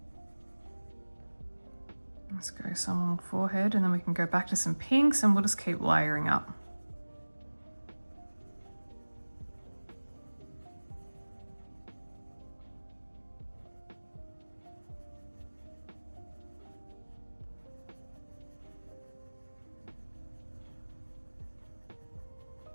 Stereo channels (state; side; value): inverted; both; correlation -1.00